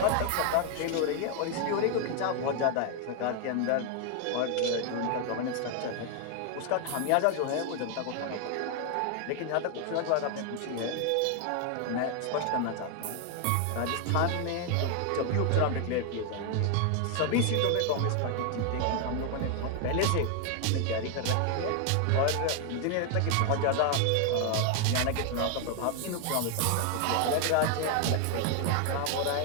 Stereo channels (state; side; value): different; both; correlation 0.00